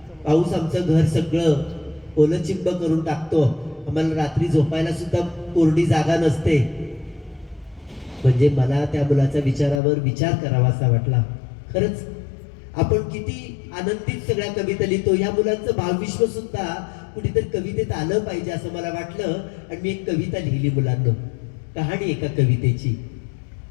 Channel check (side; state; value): right; drops out; at 9.8 s